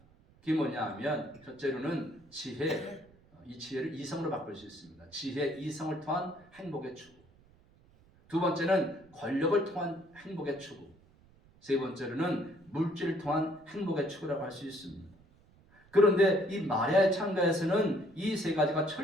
그게 뭐냐 하면 첫째로는 지혜, 이 지혜를 이성으로 바꿀 수 있습니다. 지혜, 이성을 통한 행복의 추구. 두 번째는 권력을 통한 행복의 추구. 세 번째로는 물질을 통한 행복의 추구라고 할 수 있습니다. 그런데 이 마리아의 참가에서는 이 세 가지가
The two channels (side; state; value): right; noise; rumble, 28 dB below the sound